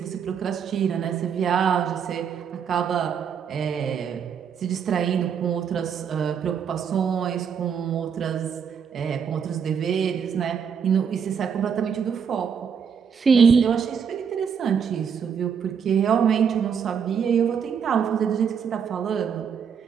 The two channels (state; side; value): quieter; left; 7.1 dB